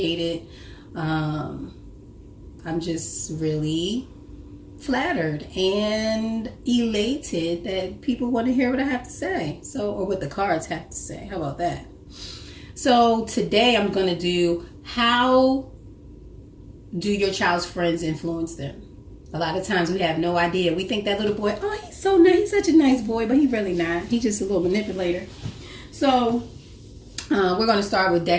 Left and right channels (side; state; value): both; identical; correlation 1.00